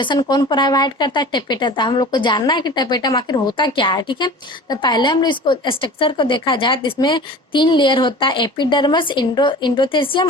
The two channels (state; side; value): normal; both; correlation 0.39